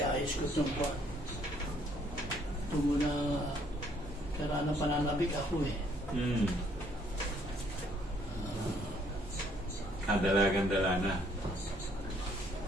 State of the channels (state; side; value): normal; both; correlation 0.65